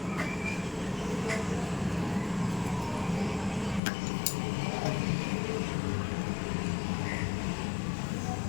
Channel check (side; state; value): right; drops out; at 3.8 s